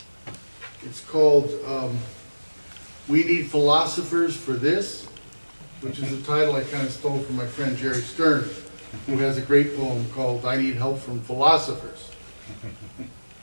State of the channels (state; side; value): inverted; both; correlation -1.00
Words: It's called We Need Philosophers for This, which is a title I kind of stole from my friend Jerry Stern, who has a great poem called I Need Help from Philosophers.